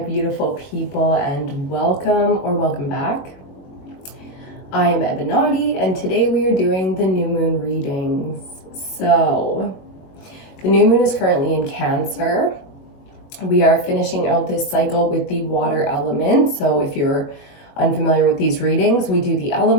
people, and welcome back. I am Ebinotti, and today we are doing the new moon readings. So, the new moon is currently in Cancer. We are finishing out this cycle with the water element. So, if you're unfamiliar with these readings, we do the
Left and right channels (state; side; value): late; right; 22 ms